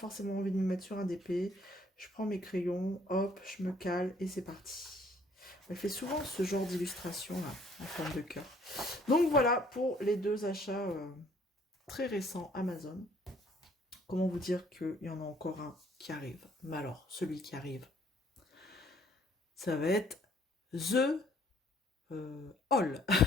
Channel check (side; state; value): both; normal; correlation 0.61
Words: envie de me mettre sur un DP. Je prends mes crayons, hop, je me cale et c'est parti. Elle fait souvent ce genre d'illustration là, en forme de cœur. Donc voilà pour les deux achats très récents Amazon. Comment vous dire qu'il y en a encore un qui arrive. Mais alors, celui qui arrive, ça va être The Haul.